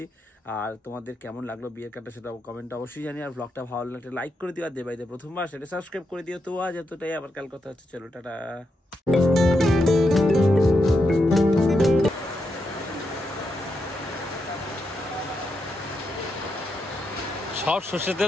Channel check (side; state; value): both; normal; correlation 0.84